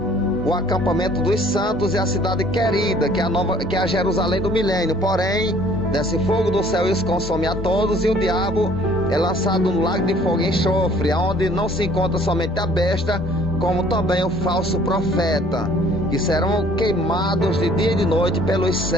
o acampamento dos santos e a cidade querida, que é a Jerusalém do milênio. Porém, desce fogo do céu e os consome a todos, e o diabo é lançado no lago de fogo e enxofre, onde não se encontra somente a besta, como também o falso profeta, que serão queimados de dia e de noite pelos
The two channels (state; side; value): normal; both; correlation 0.56